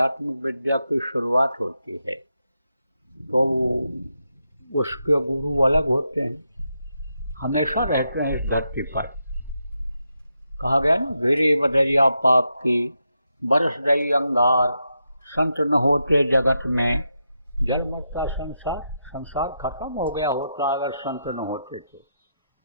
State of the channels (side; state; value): both; inverted; correlation -0.84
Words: विद्या की शुरुआत होती है। तो उसके गुरु अलग होते हैं, हमेशा रहते हैं इस धरती पर। कहा गया ना, गिरी बदरिया पाप की, बरस गई अंगार, संत न होते जगत में, जल मरता संसार। संसार खत्म हो गया होता अगर संत न होते थे।